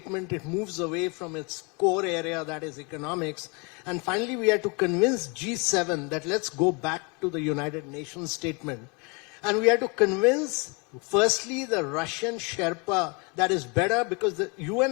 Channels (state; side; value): quieter; right; 31.1 dB